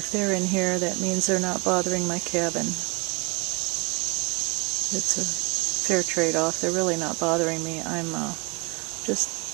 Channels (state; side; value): quieter; left; 29.4 dB